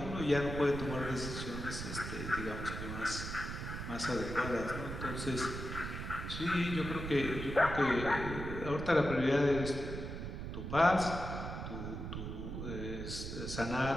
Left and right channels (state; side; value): noise; right; rumble, 6 dB below the sound